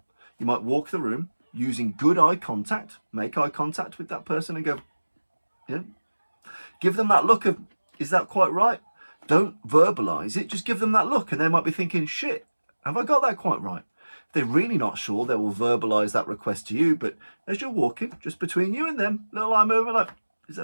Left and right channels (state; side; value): inverted; both; correlation -1.00